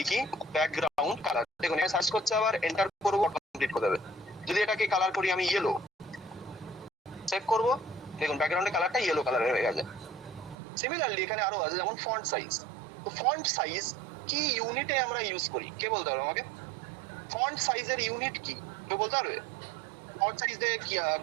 ব্যাকগ্রাউন্ড কালার, দেখুন এখানে সার্চ করছে, আবার এন্টার করবো, কমপ্লিট করে দেবে। যদি এটাকে কালার করি আমি ইয়েলো, সেভ করবো, দেখুন ব্যাকগ্রাউন্ডের কালারটা ইয়েলো কালারের হয়ে গেছে। সিমিলারলি এখানে আরো আছে, যেমন ফন্ট সাইজ। তো ফন্ট সাইজ কি ইউনিটে আমরা ইউজ করি, কে বলতে পারবে আমাকে? ফন্ট সাইজের ইউনিট কি কেউ বলতে পারবে? ফন্ট সাইজে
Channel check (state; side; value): drops out; left; at 10.6 s